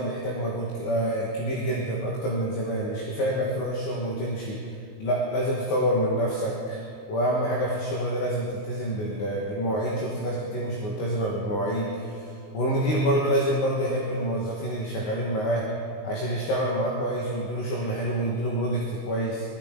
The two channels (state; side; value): late; right; 19 ms